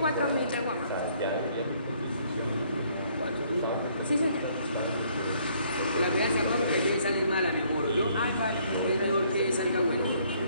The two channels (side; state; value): both; inverted; correlation -0.64